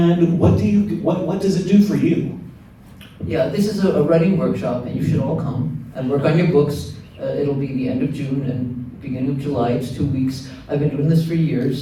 what does it do for you? Yeah, this is a writing workshop, and you should all come and work on your books. It'll be the end of June and beginning of July. It's 2 weeks. I've been doing this for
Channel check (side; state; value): both; identical; correlation 1.00